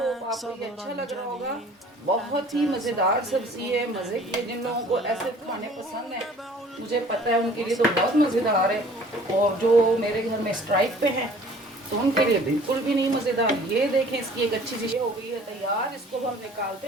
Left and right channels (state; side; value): normal; both; correlation 0.51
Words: आपको ये अच्छा लग रहा होगा। बहुत ही मज़ेदार सब्जी है, मज़े की है। जिन लोगों को ऐसे खाने पसंद है मुझे पता है उनके लिए तो बहुत मज़ेदार है, और जो मेरे घर में स्ट्राइक पे हैं तो उनके लिए बिल्कुल भी नहीं मज़ेदार। ये देखें, इसकी एक अच्छी चीज़ हो गई है तैयार। इसको हम निकालते